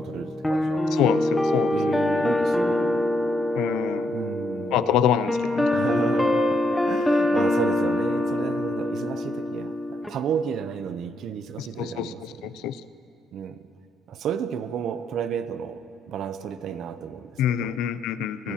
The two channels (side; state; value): both; normal; correlation 0.76